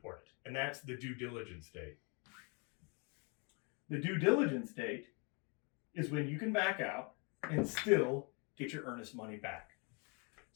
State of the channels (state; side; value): quieter; right; 34.4 dB